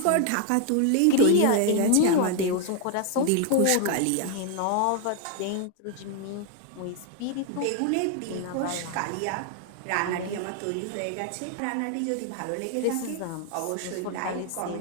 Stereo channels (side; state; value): both; different; correlation 0.00